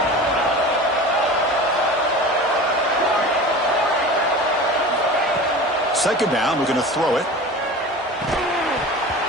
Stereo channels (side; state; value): both; normal; correlation 0.35